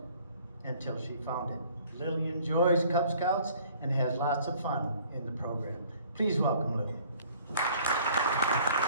until she found it. Lily enjoys Cub Scouts and has lots of fun in the program. Please welcome Lily.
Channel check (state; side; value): inverted; both; correlation -0.55